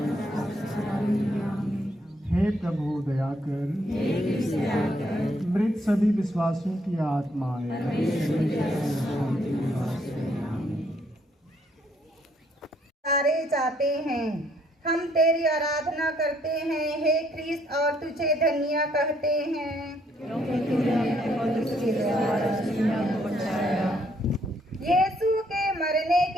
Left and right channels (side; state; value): both; normal; correlation 0.69